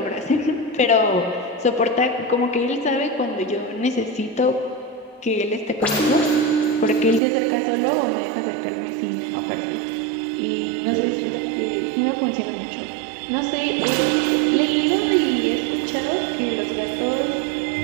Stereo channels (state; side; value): drops out; left; at 7.2 s